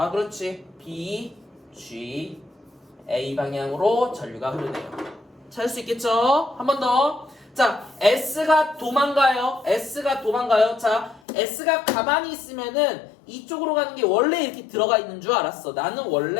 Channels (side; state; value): right; drops out; at 11.2 s